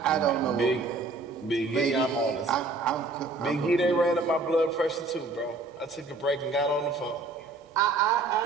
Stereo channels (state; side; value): quieter; left; 3.5 dB